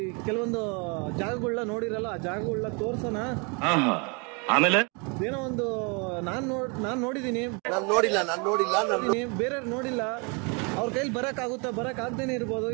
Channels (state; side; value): quieter; left; 32.9 dB